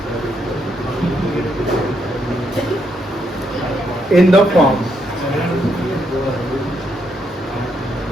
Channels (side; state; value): both; normal; correlation 0.77